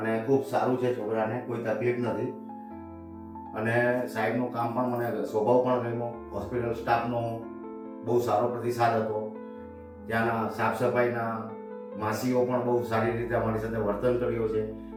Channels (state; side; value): identical; both; correlation 1.00